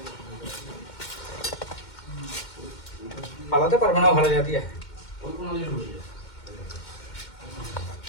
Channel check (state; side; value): late; right; 2.1 ms